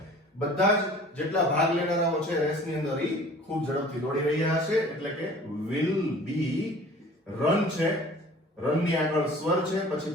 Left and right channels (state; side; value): normal; both; correlation 0.47